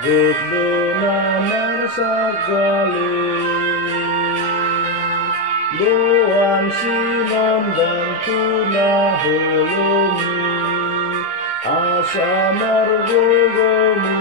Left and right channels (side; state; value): both; normal; correlation 0.05